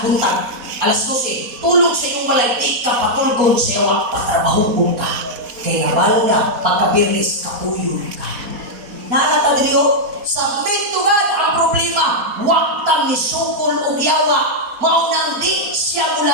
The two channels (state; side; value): late; left; 4.2 ms